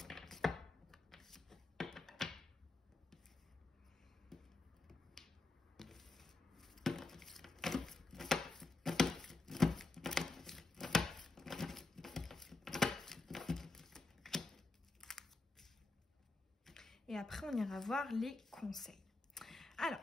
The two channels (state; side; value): quieter; right; 3.3 dB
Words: Et après, on ira voir les conseils.